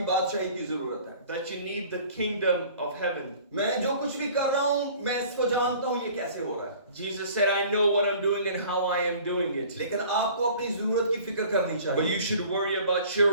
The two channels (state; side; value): inverted; both; correlation -0.49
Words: बादशाही की जरूरत है। that you need the kingdom of heaven. मैं जो कुछ भी कर रहा हूँ मैं इसको जानता हूँ ये कैसे हो रहा है, Jesus said, I know what I'm doing and how I am doing it. लेकिन आपको अपनी जरूरत की फिक्र करनी But चाहिए। you should worry about